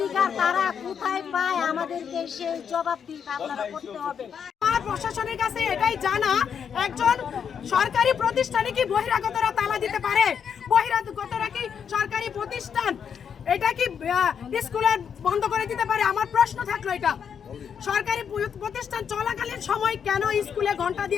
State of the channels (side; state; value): right; quieter; 7.4 dB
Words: তারা কোথায় পায়? আমাদেরকে সেই জবাবদিহি আপনারা করতে হবে। আমার প্রশাসনের কাছে এটাই জানা, একজন সরকারি প্রতিষ্ঠানে কি বহিরাগতরা তালা দিতে পারে? বহিরাগতরা কি সরকারি প্রতিষ্ঠান এটা কি স্কুলের বন্ধ করে দিতে পারে? আমার প্রশ্ন থাকলো এটা। সরকারি প্রতিষ্ঠান চলাকালীন সময় কেন স্কুলে ঘন্টা